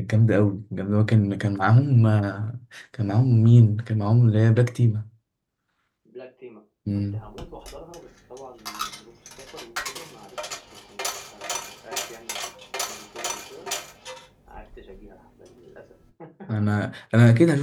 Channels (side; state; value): both; identical; correlation 1.00